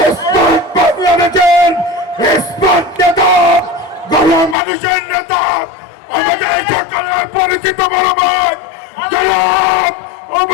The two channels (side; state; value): right; drops out; at 4.5 s